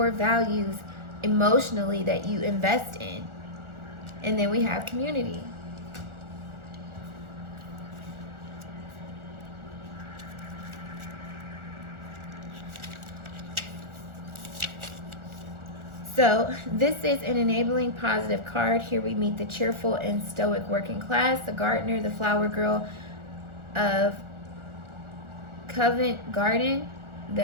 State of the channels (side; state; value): left; late; 1.4 ms